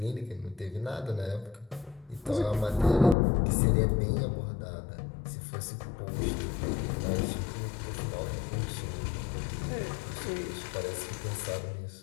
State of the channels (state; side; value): drops out; right; at 3.2 s